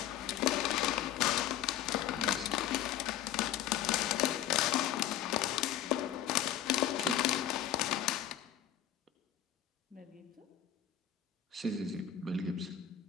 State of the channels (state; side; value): quieter; right; 10.9 dB